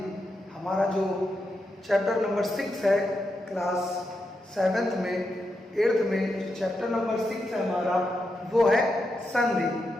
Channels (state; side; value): normal; both; correlation 0.85